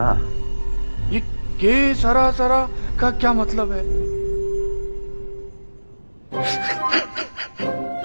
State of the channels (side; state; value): both; inverted; correlation -1.00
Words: ये के सरा सरा का क्या मतलब है?